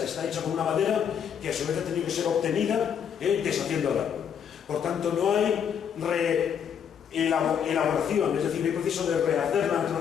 está hecho con una madera que a su vez ha tenido que ser obtenida deshaciendo el árbol. Por tanto, no hay elaboración, es decir, no hay proceso de rehacer la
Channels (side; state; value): right; quieter; 8.0 dB